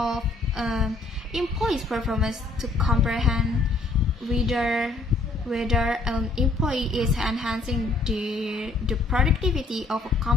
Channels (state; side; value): quieter; right; 3.4 dB